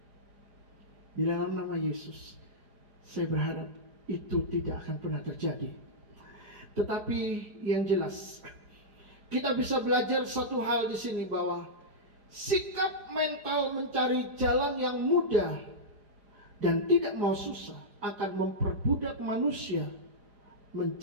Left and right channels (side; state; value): left; late; 4.9 ms